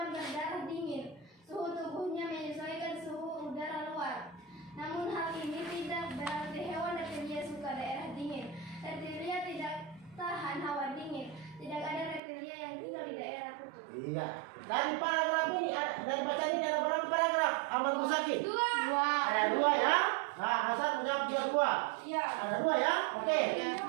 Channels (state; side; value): drops out; left; at 12.2 s